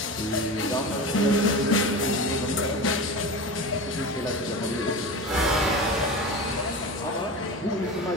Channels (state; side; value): normal; both; correlation 0.28